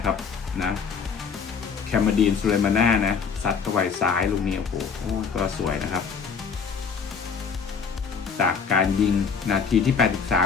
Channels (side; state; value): right; quieter; 6.0 dB